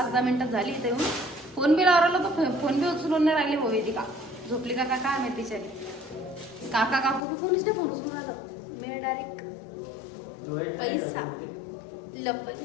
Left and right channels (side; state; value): right; drops out; at 7.2 s